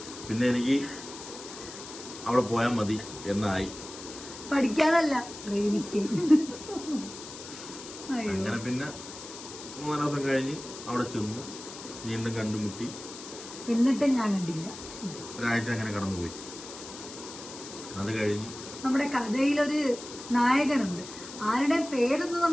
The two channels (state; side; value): noise; left; hiss, 13 dB below the sound